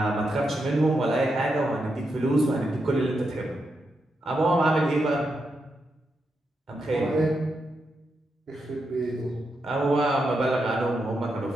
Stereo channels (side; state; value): both; normal; correlation 0.84